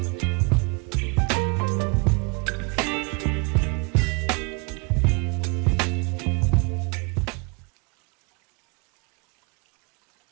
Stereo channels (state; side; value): quieter; left; 31.4 dB